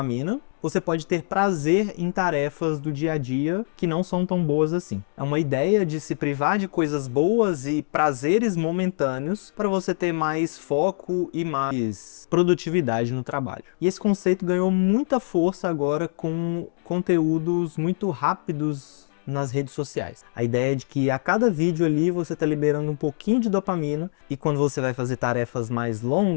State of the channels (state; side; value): silent; right; digital silence